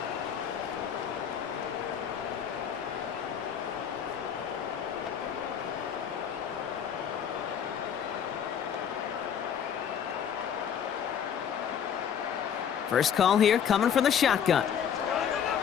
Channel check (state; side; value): quieter; right; 8.3 dB